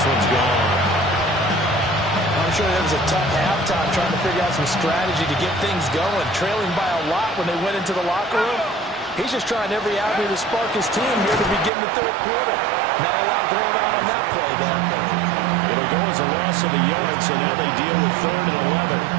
one's gone. I'm sure it was a tough halftime trying to figure out some strategy to get things going. Trailing by a lot when they went into the locker room. He's just trying every avenue to spark his team here to begin the third quarter. Not a lot going on that play, though. It'll go as a loss of a yard, so now they deal with 3rd and 11.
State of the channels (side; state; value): left; drops out; at 11.7 s